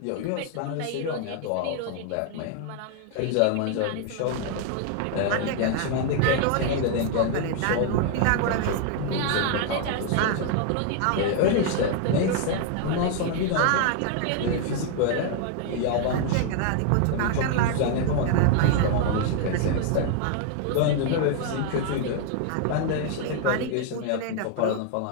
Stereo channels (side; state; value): both; different; correlation 0.00